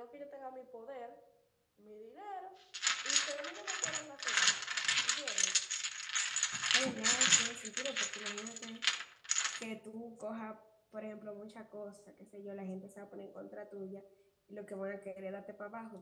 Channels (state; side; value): identical; both; correlation 1.00